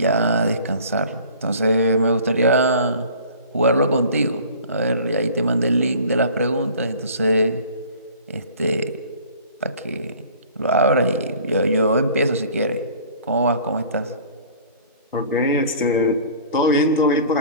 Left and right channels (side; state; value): both; inverted; correlation -0.47